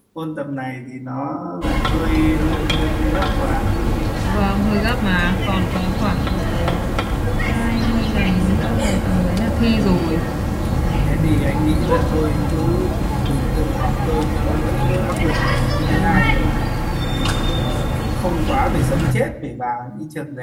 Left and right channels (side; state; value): both; identical; correlation 1.00